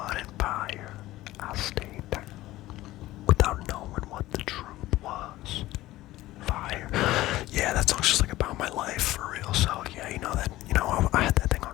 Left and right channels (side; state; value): right; quieter; 16.6 dB